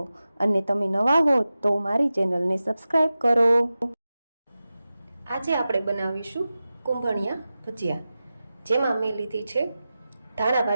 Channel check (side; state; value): both; inverted; correlation -0.94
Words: અને તમે નવા હો તો મારી ચેનલને સબસ્ક્રાઈબ કરો. આજે આપણે બનાવીશું કુંભણિયા ભજીયા, જેમાં મેં લીધી છે